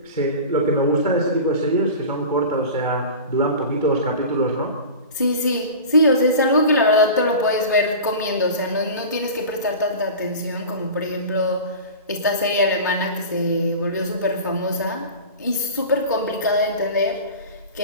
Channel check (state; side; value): inverted; both; correlation -0.34